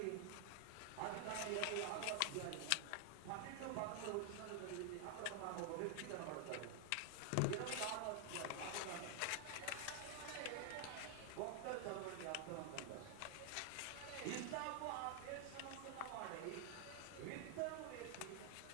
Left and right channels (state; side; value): different; both; correlation 0.00